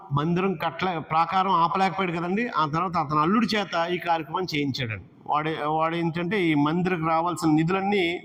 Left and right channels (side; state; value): both; identical; correlation 1.00